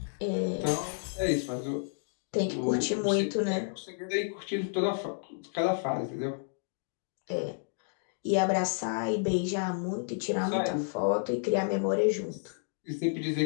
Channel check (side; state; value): right; silent; digital silence